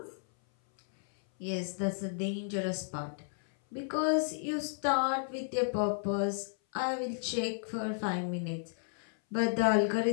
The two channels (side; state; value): right; silent; 56 dB below the other